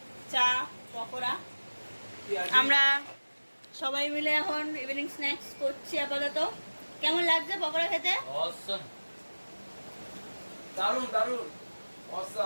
চা পকোড়া। আমরা সবাই মিলে এখন ইভিনিং স্ন্যাক্স করছি আপাতত। কেমন লাগছে পকোড়া খেতে? দারুন দারুন,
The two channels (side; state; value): both; inverted; correlation -1.00